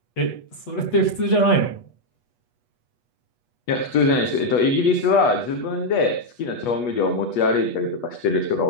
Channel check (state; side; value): late; right; 8.2 ms